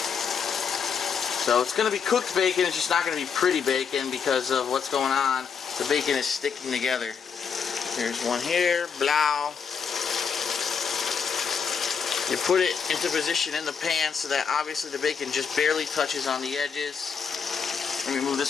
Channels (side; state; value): right; quieter; 6.4 dB